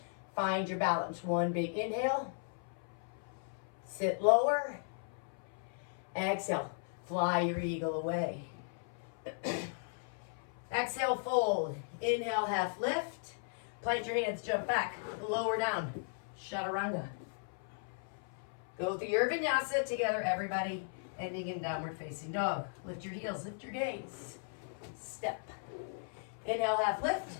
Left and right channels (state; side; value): silent; right; 53 dB below the other